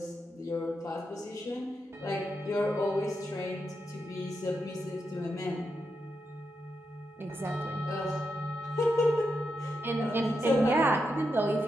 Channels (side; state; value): both; normal; correlation 0.85